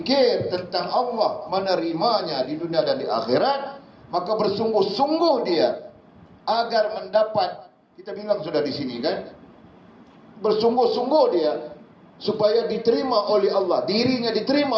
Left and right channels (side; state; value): both; identical; correlation 1.00